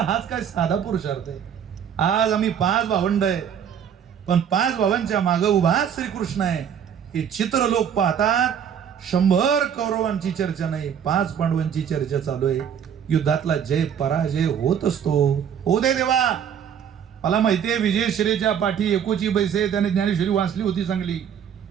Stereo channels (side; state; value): left; quieter; 8.4 dB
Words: हाच काय साधा पुरुषार्थ आहे. आज आम्ही 5 भावंड आहे पण 5 भावांच्या मागे उभा श्रीकृष्ण आहे. हे चित्र लोक पाहतात. 100 कौरवांची चर्चा नाही, 5 पांडवांची चर्चा चालू आहे. युद्धातला जय पराजय होत असतो. हो दे देवा. मला माहितीये विजयश्रीच्या पाठी एकोची बैसे त्याने ज्ञानेश्वरी वाचली होती चांगली.